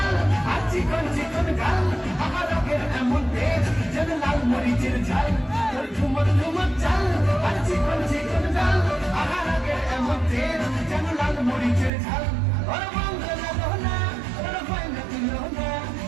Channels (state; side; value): drops out; left; at 11.9 s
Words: মরিচের ঝাল তোর ঝুমর ঝুমর চাল আর চিকন চিকন ডাল আহার আগের এমন তেল যেন লাল মরিচের ঝাল ওর বন্ধ লাগো না ওর ভয় না দিল না